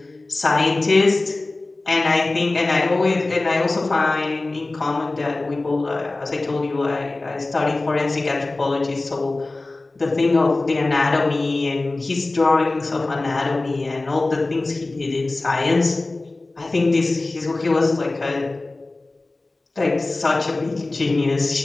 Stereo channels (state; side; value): quieter; right; 3.1 dB